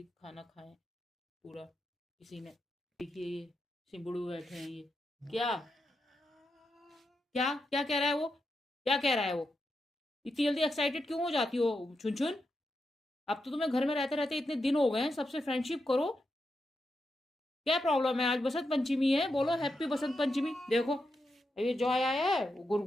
खाना खाएं पूरा किसी ने। देखिए ये सिंबुड़ू बैठे हैं ये। क्या क्या क्या कह रहा है वो? क्या कह रहा है वो? इतनी जल्दी एक्साइटेड क्यों हो जाती हो छुन छुन? अब तो तुम्हें घर में रहते रहते इतने दिन हो गए हैं, सबसे फ्रेंडशिप करो। क्या प्रॉब्लम है? आज बसंत पंचमी है, बोलो हैप्पी बसंत पंचमी। देखो ये जॉय आया है, गुर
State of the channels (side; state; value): both; normal; correlation 0.86